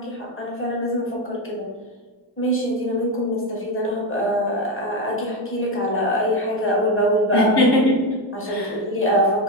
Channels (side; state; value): both; normal; correlation 0.11